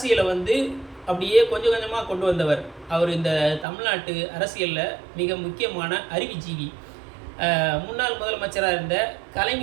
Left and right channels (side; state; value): left; drops out; at 3.7 s